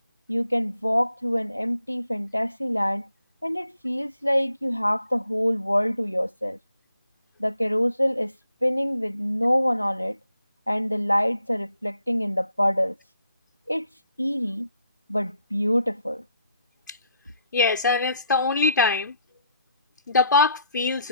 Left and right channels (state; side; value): inverted; both; correlation -0.74